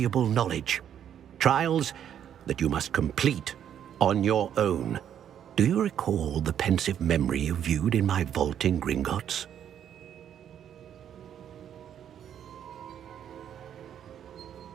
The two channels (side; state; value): left; quieter; 9.5 dB